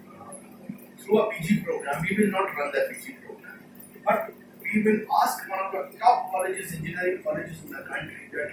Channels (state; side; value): identical; both; correlation 1.00